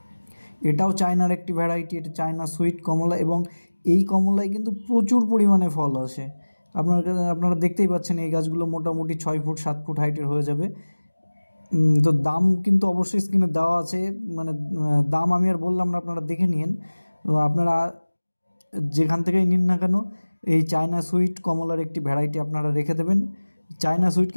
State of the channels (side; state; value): both; inverted; correlation -1.00